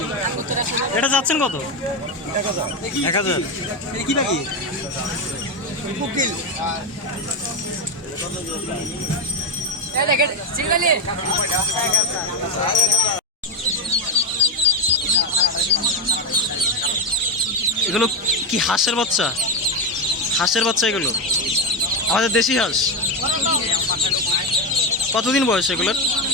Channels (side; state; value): both; normal; correlation 0.10